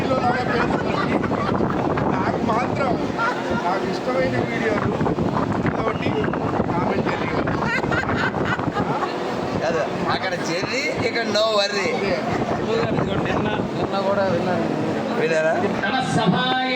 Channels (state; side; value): identical; both; correlation 1.00